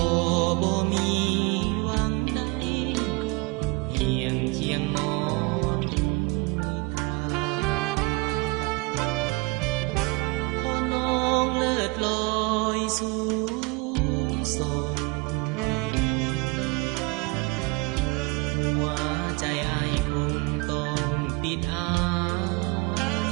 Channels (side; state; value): left; quieter; 25.6 dB